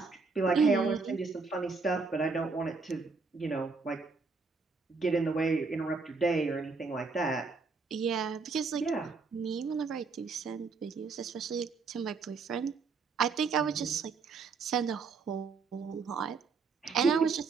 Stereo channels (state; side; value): quieter; left; 4.6 dB